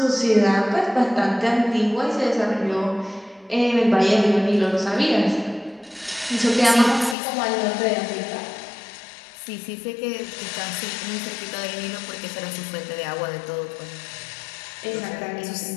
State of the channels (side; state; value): right; drops out; at 7.2 s